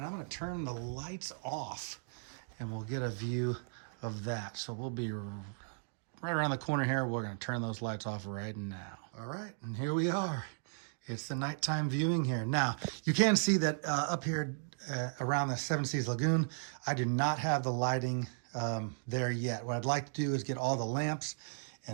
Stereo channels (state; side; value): silent; left; digital silence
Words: I'm gonna turn the lights off, and we'll get a view of that. So we'll be right around the corner here. We're gonna turn those lights off right now. All right, and here we are. It's the nighttime viewing here. Now, you can see that up here around the Seven Seas Lagoon, I do not have the lighting there yet. What I'd like to do is get all the lamps